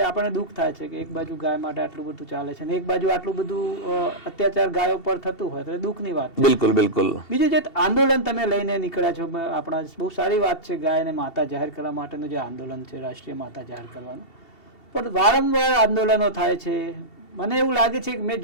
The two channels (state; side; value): late; right; 2.7 ms